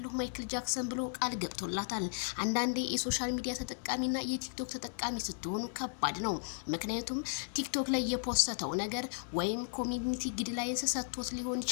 ማይክል ጃክሰን ብሎ ቃል ገብቶላታል። አንዳንዴ የሶሻል ሚዲያ ተጠቃሚና የቲክቶክ ተጠቃሚ ስትሆኑ ከባድ ነው። ምክንያቱም ቲክቶክ ላይ የፖስተው ነገር ወይም ኮሚኒቲ ጋይድላይንስ ሰጥቶት ሊሆን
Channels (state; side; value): silent; right; digital silence